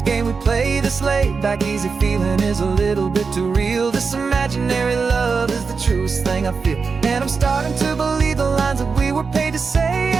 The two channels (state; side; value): quieter; left; 5.0 dB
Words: game we play. This laid-back, easy feeling is a little bit too real. This imaginary love is the truest thing I feel, and I'm starting to believe the lines that we were paid to say.